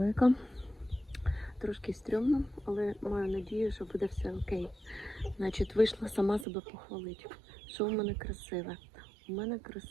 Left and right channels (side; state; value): left; drops out; at 6.5 s